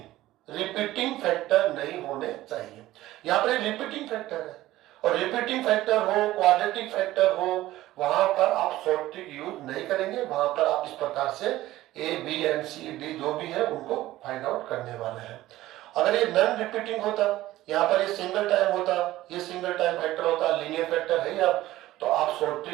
फैक्टर नहीं होने चाहिए। यहां पर रिपीटिंग फैक्टर है, और रिपीटिंग फैक्टर हो, क्वाड्रेटिक फैक्टर हो, वहां पर आप शॉर्ट ट्रिक यूज नहीं करेंगे, वहां पर आप इस प्रकार से A B and C D जो भी है उनको फाइंड आउट करने वाले हैं। अगर ये नॉन रिपीटिंग होता, यहाँ पर ये सिंगल टाइम होता, ये सिंगल टाइम फैक्टर होता, लीनियर फैक्टर है या, तो आप शॉर्ट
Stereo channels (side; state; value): left; quieter; 15.8 dB